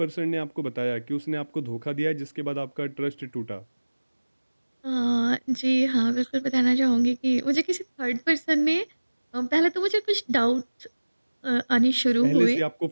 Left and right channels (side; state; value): both; inverted; correlation -1.00